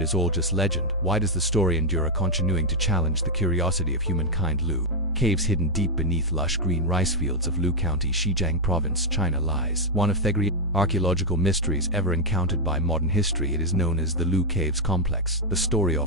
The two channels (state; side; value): normal; both; correlation 0.00